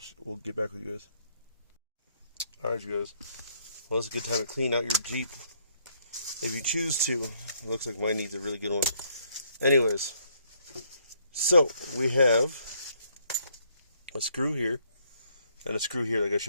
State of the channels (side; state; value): both; inverted; correlation -0.69